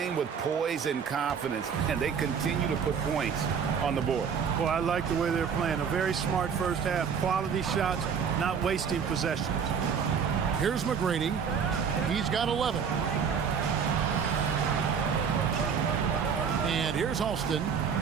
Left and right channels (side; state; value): left; quieter; 6.8 dB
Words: with poise and confidence, and they continue to put points on the board. Well, I like the way they're playing. A very smart first half. Quality shots, not wasting possessions. Here's McGrady. He's got 11. And here's Alston.